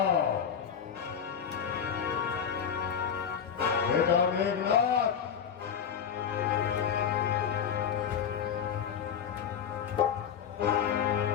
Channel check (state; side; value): quieter; right; 7.7 dB